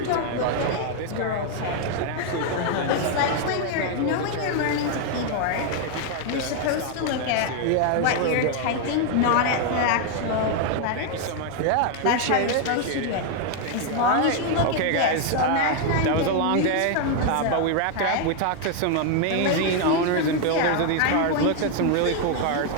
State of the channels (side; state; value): both; different; correlation 0.00